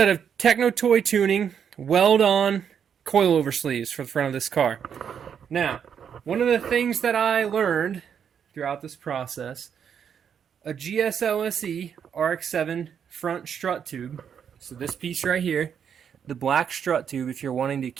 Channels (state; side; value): quieter; left; 7.8 dB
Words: of Techno Toy Tuning Weld-On Coilover sleeves for the front of this car. Now, one of the things that I learned throughout this process, a GSLSE RX7 front strut tube, so this piece right here, the black strut tube, if you're wanting to